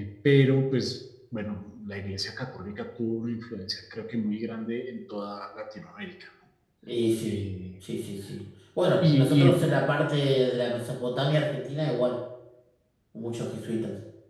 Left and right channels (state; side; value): identical; both; correlation 1.00